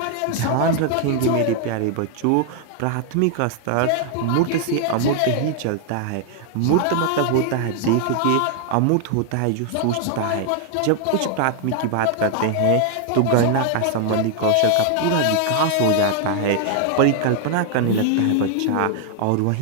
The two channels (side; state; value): both; different; correlation 0.00